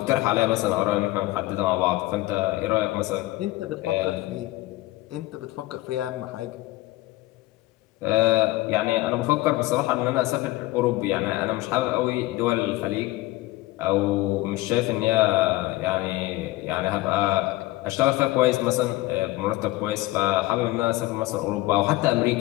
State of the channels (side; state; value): right; quieter; 18.6 dB